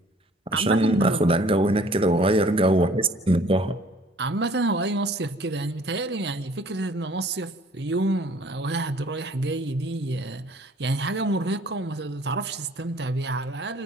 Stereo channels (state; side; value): normal; both; correlation 0.55